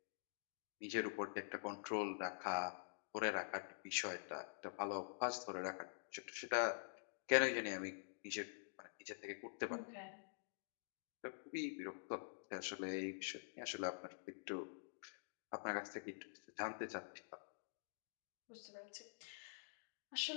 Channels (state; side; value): silent; right; digital silence